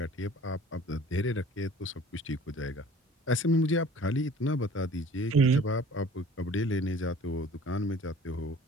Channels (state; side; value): normal; both; correlation 0.48